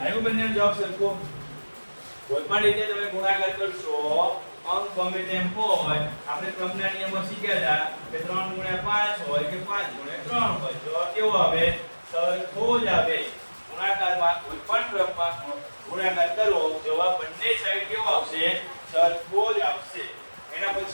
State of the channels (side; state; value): both; inverted; correlation -1.00